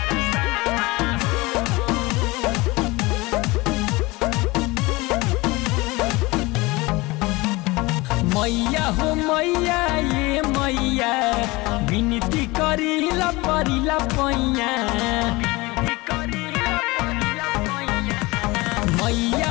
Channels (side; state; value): right; quieter; 22.6 dB